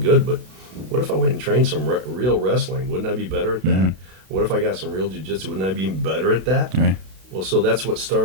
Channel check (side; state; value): left; late; 32 ms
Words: but what if I went and trained some real wrestling? Wouldn't I be better at that? What if I got some real jiu-jitsu? Wouldn't I be even better at that? Right. Well, so that's what